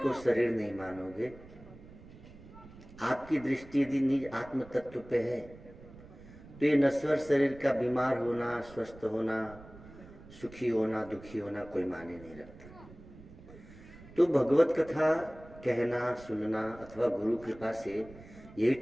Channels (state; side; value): noise; right; rumble, 19 dB below the sound